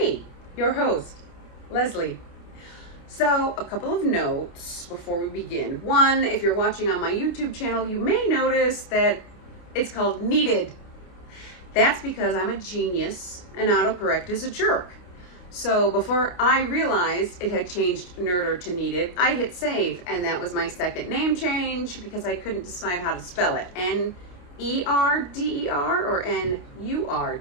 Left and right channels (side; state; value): right; late; 28 ms